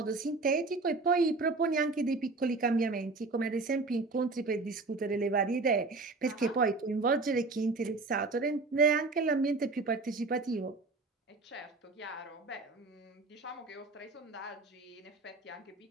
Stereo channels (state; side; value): quieter; left; 3.7 dB